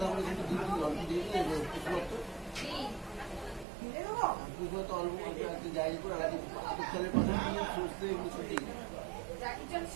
করে কিন্তু দিয়ে দিই, অল্প দিয়ে দিই, কি? তো অল্প অল্প একটু জায়গা করে আলাদা চালের পাশে সুস্থ এগুলো ছুটি জাকি চল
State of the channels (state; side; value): drops out; left; at 3.7 s